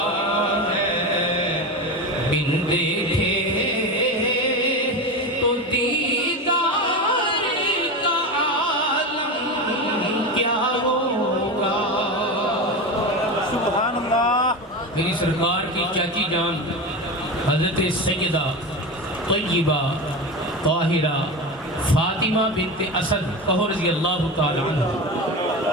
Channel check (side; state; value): both; normal; correlation 0.22